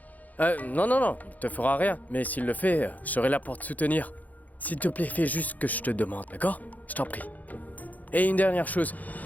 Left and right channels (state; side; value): late; right; 0.079 ms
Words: Non, non, non, il te fera rien. Mais s'il le fait, je serai là pour te soutenir. S'il te plaît, fais juste ce que je te demande, d'accord? Je t'en prie. Et une dernière chose.